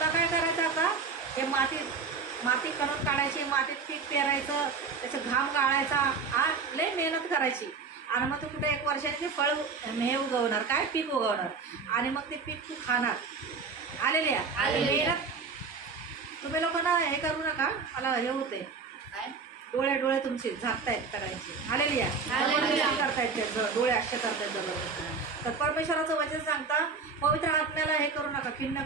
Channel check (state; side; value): quieter; left; 5.0 dB